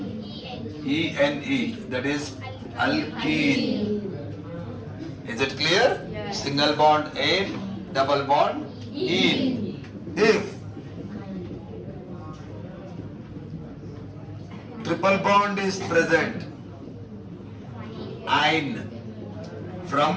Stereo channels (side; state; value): both; identical; correlation 1.00